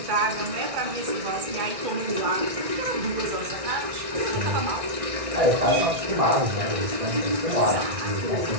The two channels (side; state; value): left; late; 1.6 ms